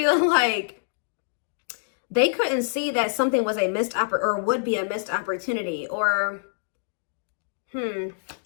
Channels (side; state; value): right; silent; digital silence